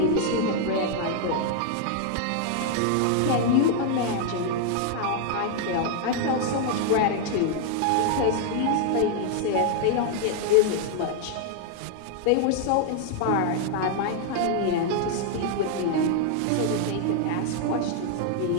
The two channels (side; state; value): both; different; correlation 0.00